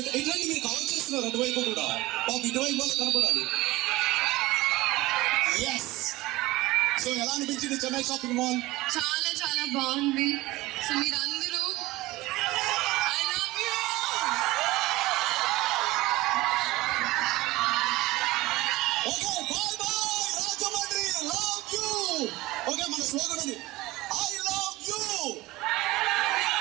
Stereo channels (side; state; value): left; quieter; 19.3 dB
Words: ఇట్లాంటి మీరు కవర్ చేస్తున్నారు అటువైపు కూడా, బాబు ఇటువైపు వాళ్ళు కనపడాలి. ఎస్. సో ఎలా అనిపించింది చెన్నై షాపింగ్ మాల్? చాలా చాలా బాగుంది. సో మీరందరూ I love you. Okay, bye bye Rajahmundry, love you. Okay, మన స్లోగన్ ఉంది, I love you,